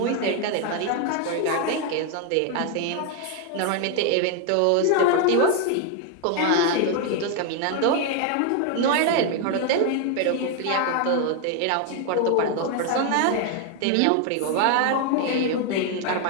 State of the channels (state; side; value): different; both; correlation 0.01